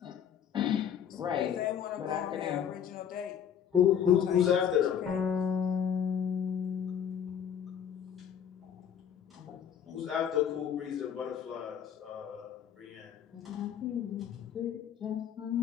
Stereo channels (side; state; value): right; quieter; 8.6 dB